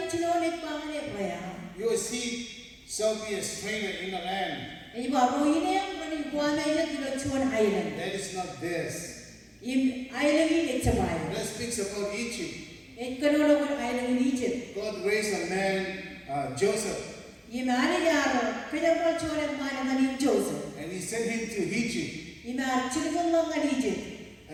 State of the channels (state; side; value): identical; both; correlation 1.00